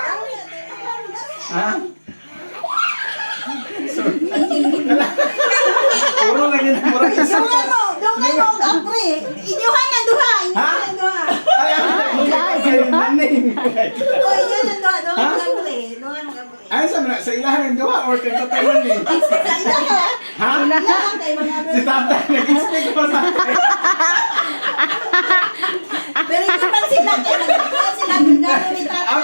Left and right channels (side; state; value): both; inverted; correlation -1.00